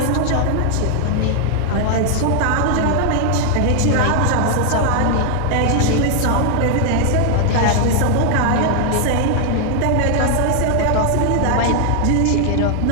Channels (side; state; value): both; different; correlation 0.00